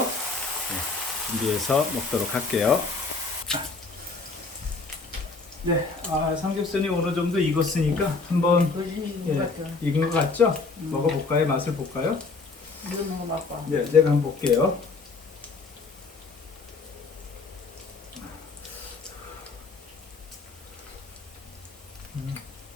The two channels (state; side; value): quieter; right; 4.1 dB